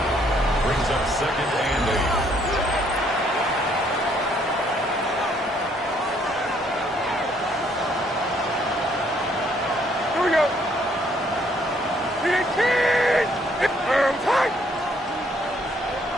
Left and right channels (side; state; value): both; normal; correlation 0.67